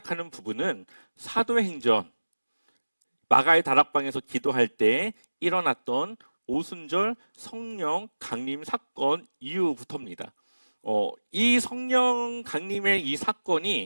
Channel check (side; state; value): both; inverted; correlation -1.00